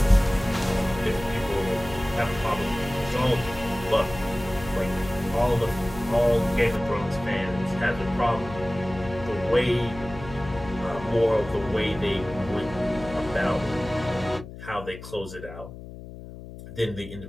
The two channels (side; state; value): left; noise; hum, 14 dB below the sound